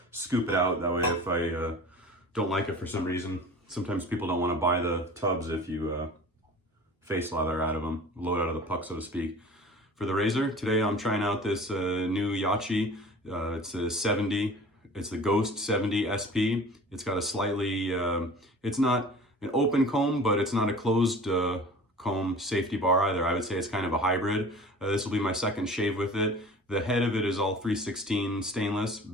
scoop it out. That way if I don't like it for some reason, sometimes people don't want to buy the tubs if you face lather out of them, load out of the puck, so to speak. For the Razor, today I'm trying out this new Yachi. It's a 70, it's the Ghost 70 SP. It's got a slightly, it's not an open comb, but it's not a closed comb safety bar either. I would say it's kind of a hybrid. This will be my second shave with it. The head of it is all 316 stainless,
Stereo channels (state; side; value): normal; both; correlation 0.42